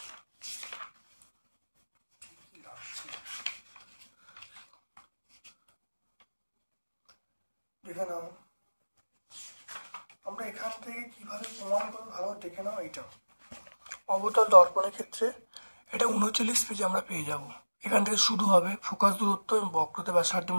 দেখে নাও, আমরা এখান থেকে কিভাবে প্রমাণ করবো ভালো দেখে নাও। এইটা অবতল দর্পণের ক্ষেত্রে এটা 39 পেজে আমরা পেয়ে যাব, এখান থেকে শুরু হবে ফোকাস দূরত্ব এবং বক্রতা ব্যাসার্ধের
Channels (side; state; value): both; inverted; correlation -1.00